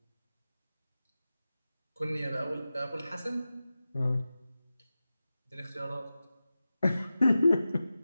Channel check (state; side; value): inverted; both; correlation -0.94